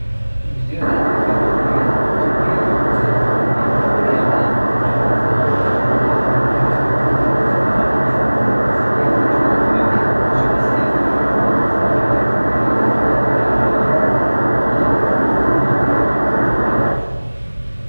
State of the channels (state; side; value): inverted; both; correlation -1.00